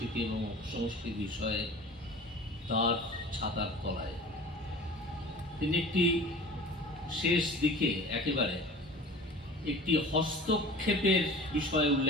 এবং সংস্কৃতি বিষয়ে তার ছাতার তলায়। তিনি একটি শেষ দিকে একেবারে একটি হস্তক্ষেপের বিষয়ে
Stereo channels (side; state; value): both; normal; correlation 0.41